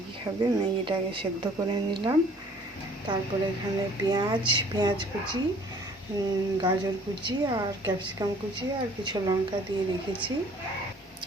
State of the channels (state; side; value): normal; both; correlation 0.55